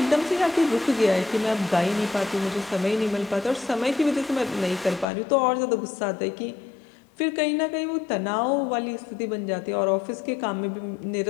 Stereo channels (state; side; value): drops out; right; at 5.1 s